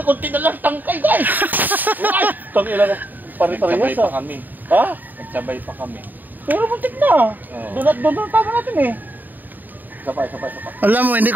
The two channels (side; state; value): left; late; 0.087 ms